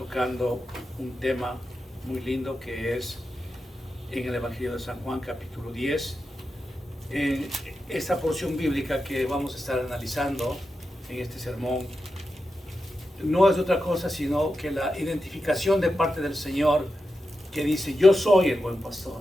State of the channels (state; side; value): normal; both; correlation 0.90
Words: un tema muy lindo que es en el Evangelio de San Juan, capítulo 10. En esta porción bíblica que vamos a estar analizando en este sermón, no es otra cosa sino que la identificación de parte del Señor que dice: yo soy el buen